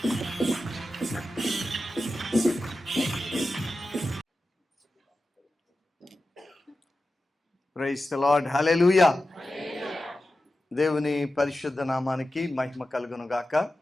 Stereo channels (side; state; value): both; normal; correlation 0.93